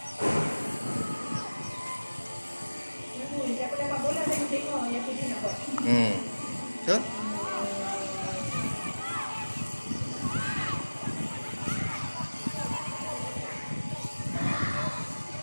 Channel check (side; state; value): both; inverted; correlation -1.00